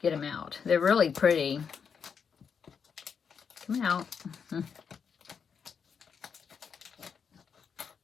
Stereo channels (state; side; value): quieter; right; 6.5 dB